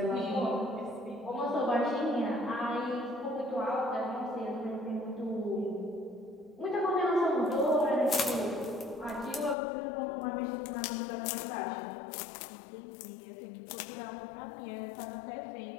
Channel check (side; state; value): right; drops out; at 9.6 s